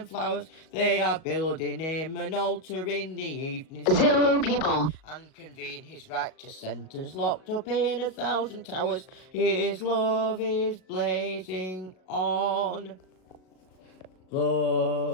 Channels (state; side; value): late; right; 37 ms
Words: flowers. They are building him an altar in the evening 0 people. and convene his righteous sentence locked up in 1,000 towers. His love is blazing on.